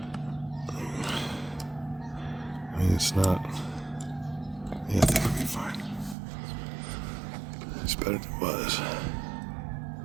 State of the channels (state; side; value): drops out; left; at 6.2 s